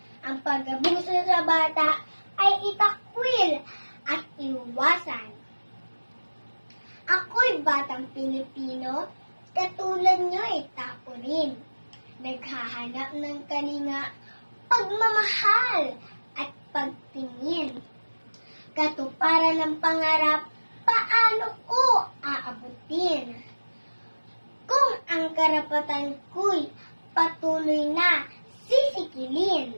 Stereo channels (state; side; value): inverted; both; correlation -1.00